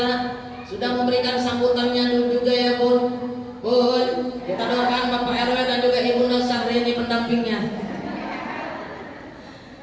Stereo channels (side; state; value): both; identical; correlation 1.00